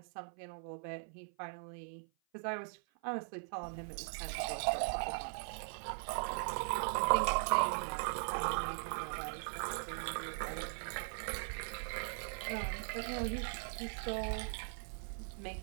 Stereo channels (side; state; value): left; silent; 51 dB below the other